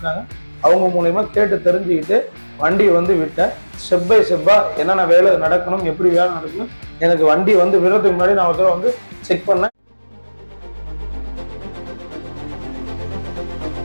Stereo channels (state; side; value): inverted; both; correlation -1.00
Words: அவங்க மூலயமா கேட்டு தெரிஞ்சுக்கிட்டு வண்டி விட்டேன். ஸ்டெப் பை ஸ்டெப்பாக என்னென்ன வேலை நடக்கணும், எப்படி வேலை நடக்கணும், எனக்கு வண்டி விடுறதுக்கு முன்னாடி நான் ஒரு செக் பண்ணேன்.